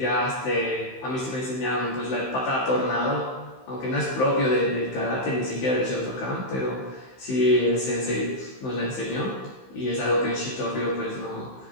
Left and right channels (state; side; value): late; right; 15 ms